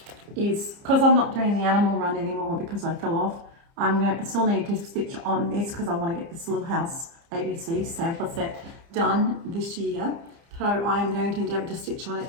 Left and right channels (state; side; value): late; left; 30 ms